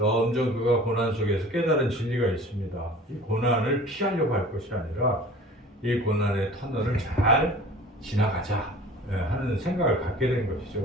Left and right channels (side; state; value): both; normal; correlation 0.44